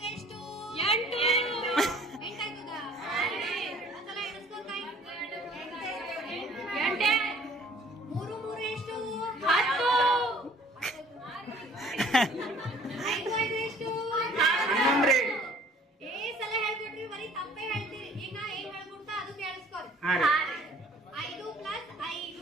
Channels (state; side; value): normal; both; correlation 0.54